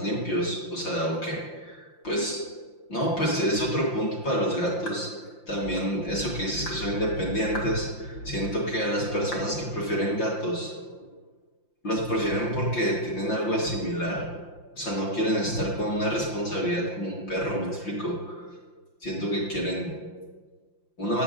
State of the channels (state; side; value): late; right; 5.8 ms